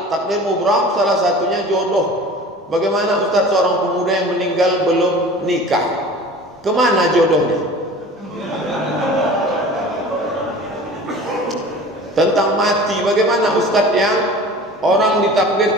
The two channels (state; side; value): normal; both; correlation 0.41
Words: Takdir mubram salah satunya jodoh. Bagaimana Ustaz seorang pemuda yang meninggal belum nikah? Kemana jodohnya? Tentang mati, bagaimana Ustaz yang orang